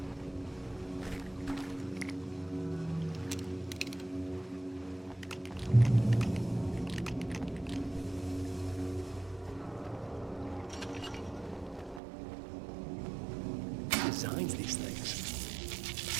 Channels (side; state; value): left; drops out; at 12.0 s